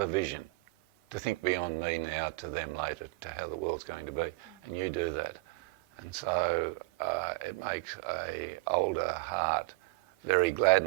a vision, to think beyond me now to them later, to how the world's going to be. And you do that. And so it makes an older heart very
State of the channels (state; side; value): quieter; left; 25.4 dB